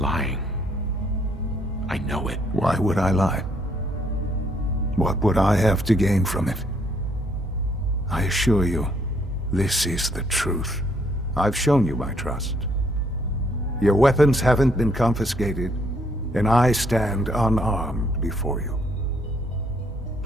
lying. I know it. Why would I lie? What would I have to gain from it? I assure you, this is the truth. I've shown you my trust. Your weapons haven't been confiscated, and I stand unarmed before you.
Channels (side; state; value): both; normal; correlation 0.69